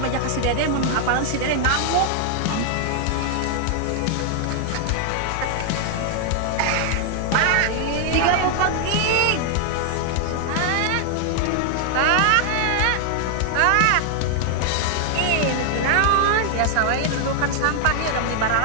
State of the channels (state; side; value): different; both; correlation 0.00